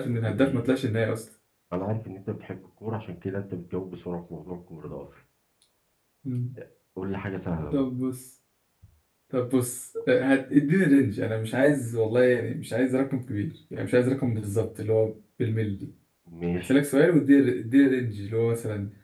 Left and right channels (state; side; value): identical; both; correlation 1.00